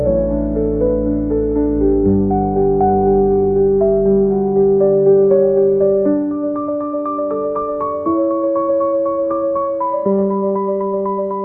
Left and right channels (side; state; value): both; identical; correlation 1.00